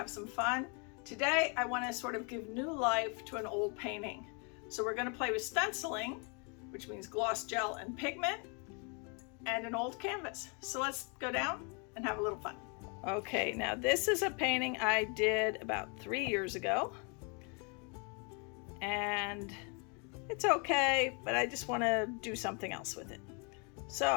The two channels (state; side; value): quieter; right; 35.0 dB